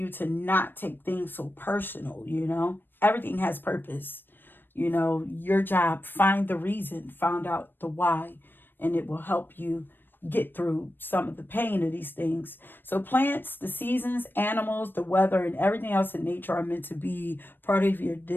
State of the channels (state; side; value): late; right; 0.095 ms